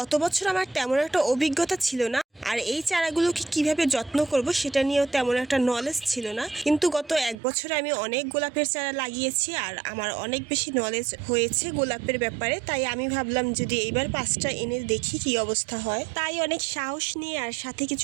বছর আমার তেমন একটা অভিজ্ঞতা ছিল না, আর এই চারাগুলোকে কিভাবে যত্ন করব সেটা নিয়েও তেমন একটা নলেজ ছিল না। কিন্তু গত 1 বছরে আমি অনেক গোলাপের চারা লাগিয়েছি আর আমার অনেক বেশি নলেজ হয়েছে গোলাপের ব্যাপারে। তাই আমি ভাবলাম যদি এইবার 5টা এনে দেখি কি অবস্থা হয়। তাই অনেক সাহস নিয়ে আর সাথে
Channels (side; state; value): left; drops out; at 7.4 s